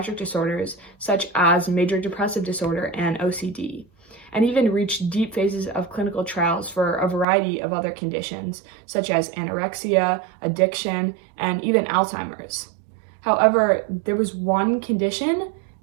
disorders such as major depressive disorder and OCD, and even reached deep phases of clinical trials for a variety of other conditions such as anorexia, addiction, and even Alzheimer's. However, there was one condition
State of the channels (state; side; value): drops out; left; at 7.2 s